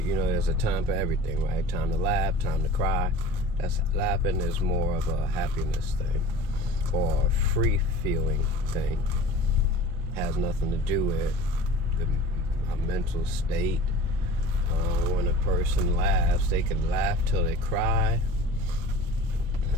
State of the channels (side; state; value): both; normal; correlation 0.40